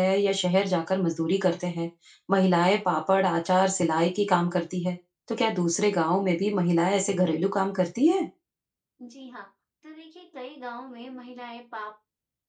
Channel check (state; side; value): identical; both; correlation 1.00